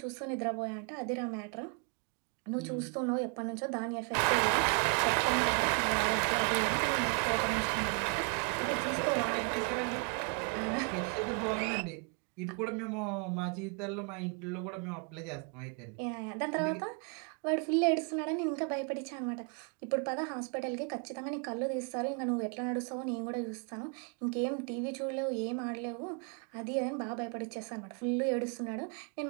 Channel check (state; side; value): quieter; left; 38.6 dB